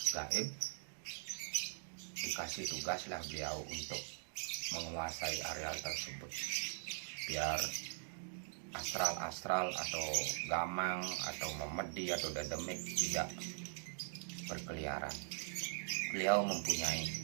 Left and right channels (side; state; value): left; silent; digital silence